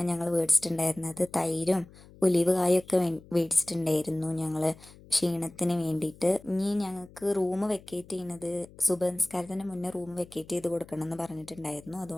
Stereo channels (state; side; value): noise; left; hum, 22 dB below the sound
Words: ഞങ്ങൾ മേടിച്ചിട്ടുണ്ടായിരുന്നത്. തൈരും ഒലിവ് കായൊക്കെ മേടിച്ചിട്ടുണ്ടായിരുന്നു ഞങ്ങൾ ക്ഷീണത്തിന് വേണ്ടിയിട്ട്. ഇനി ഞങ്ങൾക്ക് റൂം വെക്കേറ്റ് ചെയ്യുന്നത് സുബഹ് മുന്നേ റൂം വെക്കേറ്റ് ചെയ്ത് കൊടുക്കണം എന്ന് പറഞ്ഞിട്ടുണ്ടായിരുന്നു.